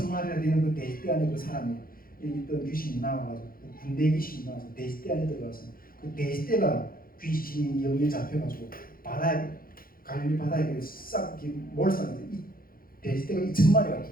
되는 그 돼지떼 안에 그 사람이 있던 귀신이 나와가지고 군대 귀신이 나와서 돼지떼 안에 들어가서 그 돼지떼가 귀신이 영에 잡혀가지고 갈릴리 바다에 싹 몰살해서 이 돼지떼가 2,000마리가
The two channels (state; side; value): late; right; 0.42 ms